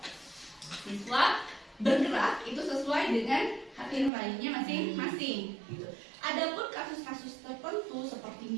Siswa bergerak itu sesuai dengan hati nuraninya masing-masing. Gitu. Adapun kasus-kasus tertentu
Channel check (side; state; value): left; drops out; at 4.1 s